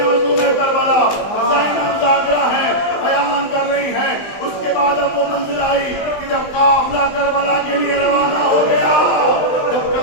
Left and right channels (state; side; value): late; right; 20 ms